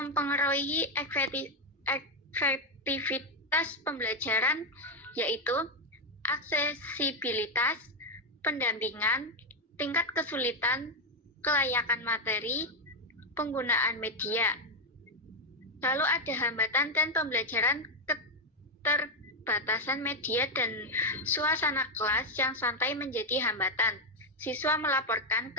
efektivitas pembelajaran yaitu aksesibilitas, pendampingan, tingkat kesulitan, kelayakan materi, penggunaan media. Lalu ada hambatan dan pembelajaran keterbatasan media dan suasana kelas yang santai menjadi hambatan. Siswa melaporkan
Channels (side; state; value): both; normal; correlation 0.04